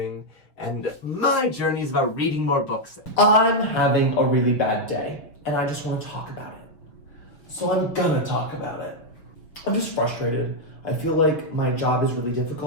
and my journey is about reading more books. I'm having a really bad day, and I just want to talk about it. So I'm gonna talk about it. I'm just frustrated. I feel like my job is really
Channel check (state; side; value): late; right; 6.2 ms